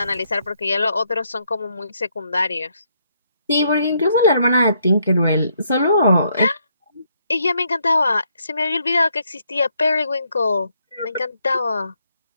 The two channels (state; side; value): inverted; both; correlation -0.73